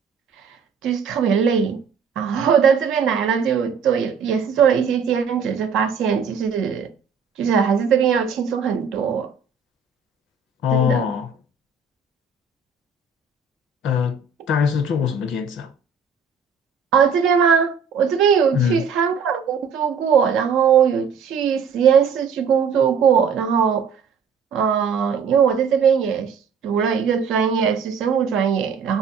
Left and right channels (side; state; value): left; quieter; 5.5 dB